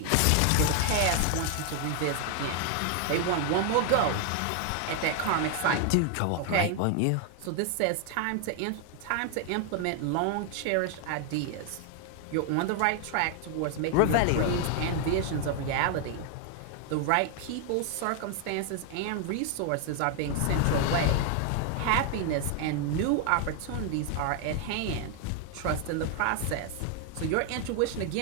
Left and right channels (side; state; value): both; different; correlation 0.00